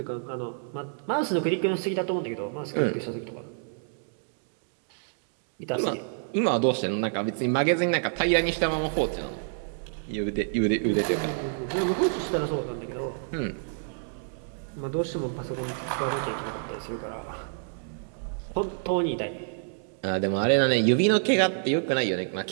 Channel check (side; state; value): left; silent; digital silence